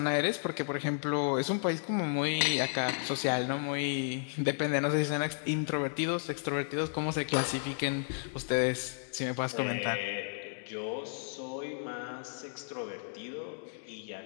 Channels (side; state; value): right; silent; digital silence